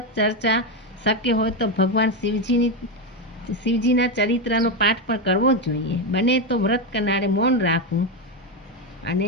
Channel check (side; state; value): both; normal; correlation 0.10